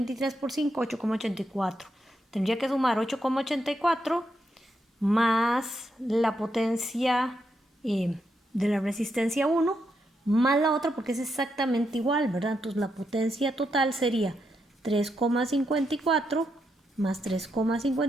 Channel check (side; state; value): both; normal; correlation 0.82